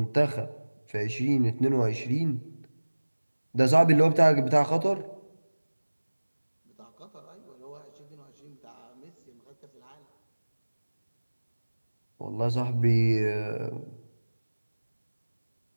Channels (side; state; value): both; inverted; correlation -1.00